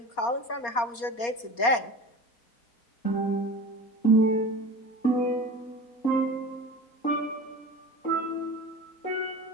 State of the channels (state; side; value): late; right; 4.2 ms